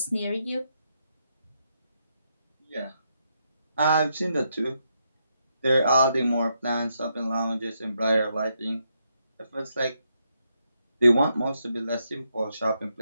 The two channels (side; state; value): both; inverted; correlation -0.80